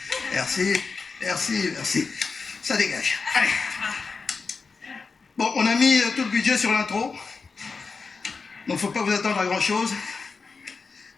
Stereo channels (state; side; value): quieter; right; 4.7 dB